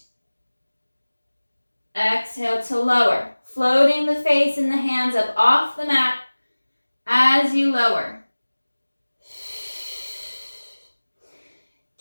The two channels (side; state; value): both; inverted; correlation -1.00